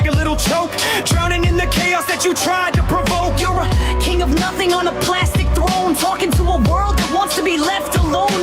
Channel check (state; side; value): identical; both; correlation 1.00